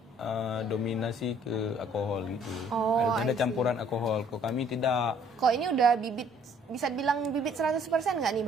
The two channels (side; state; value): both; normal; correlation 0.59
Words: dominasi ke alkohol gitu. Ada campuran alkohol. Kok kami tidak. Kok ini udah bibit, bisa bilang bibit 100% nggak nih